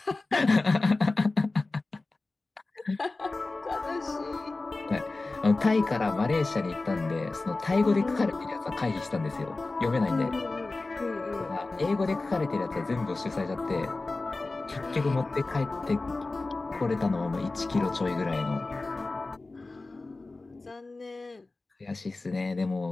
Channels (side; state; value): right; quieter; 3.3 dB